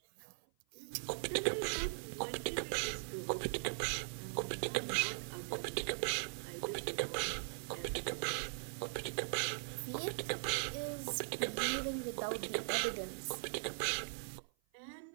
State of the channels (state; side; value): silent; left; 51 dB below the other